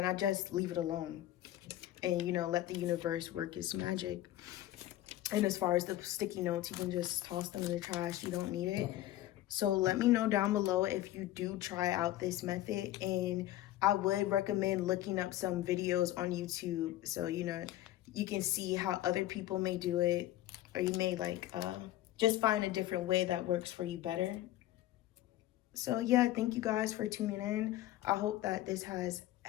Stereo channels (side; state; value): right; quieter; 14.4 dB